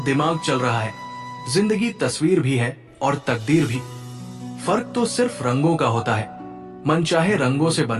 दिमाग चल रहा है। जिंदगी तस्वीर भी है और तकदीर भी। फर्क तो सिर्फ रंगों का होता है। मनचाहे रंगों से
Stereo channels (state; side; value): identical; both; correlation 1.00